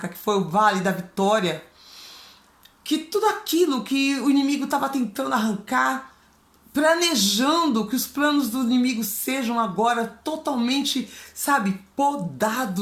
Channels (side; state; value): both; identical; correlation 1.00